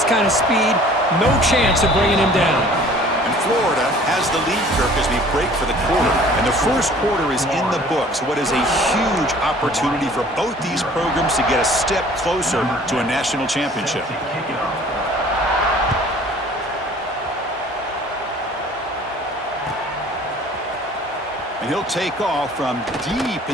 kind of speed, no chance of bringing him down. Florida has the lead, Kirk, as we break for the quarter. And the first quarter is in the books. What is a huge opportunity for both these programs to get a step closer to a national championship. And he'll take off from deep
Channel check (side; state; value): both; normal; correlation 0.51